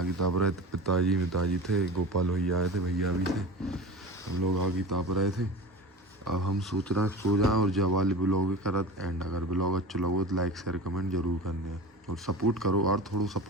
ताप रहे थे। पिताजी थे, गोपाल भैया आए थे, भैया भी थे, हम लोग आगे ताप रहे थे। अब हम सोच रहे हैं सो जाएं और जब वाले ब्लॉग करत एंड। अगर ब्लॉग अच्छा लगे तो लाइक शेयर कमेंट जरूर करने और सपोर्ट करो यार, थोड़ा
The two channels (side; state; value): both; normal; correlation 0.33